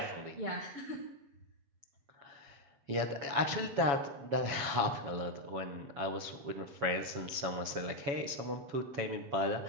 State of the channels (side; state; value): left; late; 7.2 ms